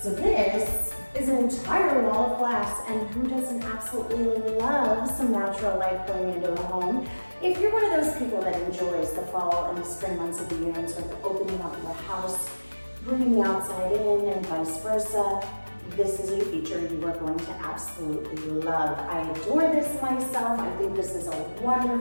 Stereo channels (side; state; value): both; inverted; correlation -1.00